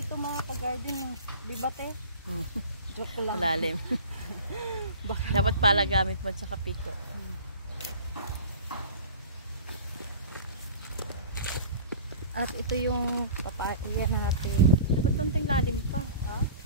mga ka-garden. Di ba te? Joke lang. Malalim. Dapat pala gamit mo sa piko. At ito yung papaya natin. Dapat konting lalim pa. Ha?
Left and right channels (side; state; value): both; inverted; correlation -0.39